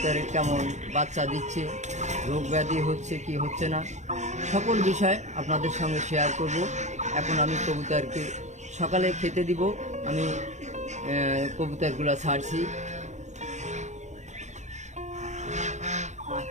কেমন বাচ্চা দিচ্ছে, রোগ ব্যাধি হচ্ছে কি হচ্ছে না, সকল বিষয় আপনাদের সঙ্গে শেয়ার করব। এখন আমি কবুতরকে সকালে খেতে দিব। আমি কবুতরগুলো ছাড়ছি।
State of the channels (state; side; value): late; left; 0.34 ms